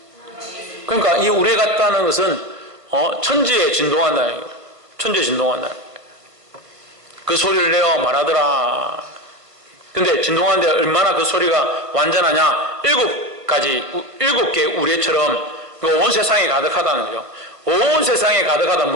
그러니까 이 우레 같다는 것은 천지에 진동한다. 천지에 진동한다. 그 소리를 내어 말하더라. 근데 진동하는데 얼마나 그 소리가 완전하냐? 7개 우레처럼 온 세상에 가득하다는 거죠. 온 세상에 가득하다.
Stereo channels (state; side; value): late; left; 1.5 ms